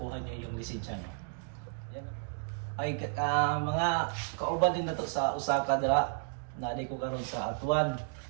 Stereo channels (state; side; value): silent; left; 56 dB below the other